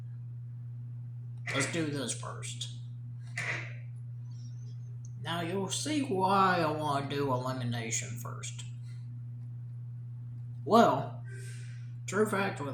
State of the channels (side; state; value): both; identical; correlation 1.00